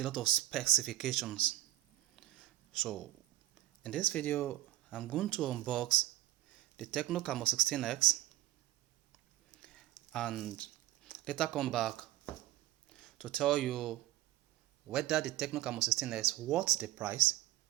lot of specifications. So in this video, I'm going to unbox the Tecno Camon 16X and later come back to tell you whether the Tecno Camon 16S worth the price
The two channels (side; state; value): left; quieter; 15.2 dB